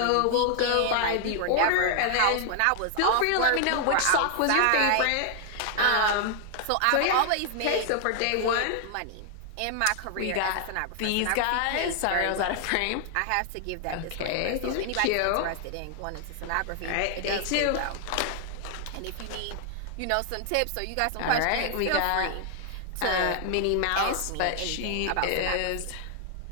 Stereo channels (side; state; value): both; different; correlation 0.00